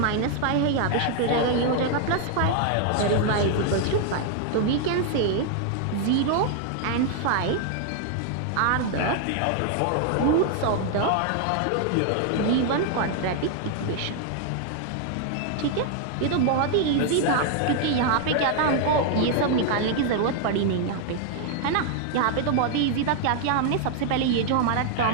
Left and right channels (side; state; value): both; different; correlation 0.00